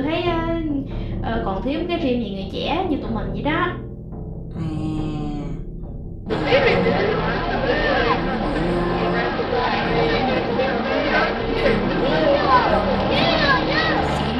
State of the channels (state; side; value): identical; both; correlation 1.00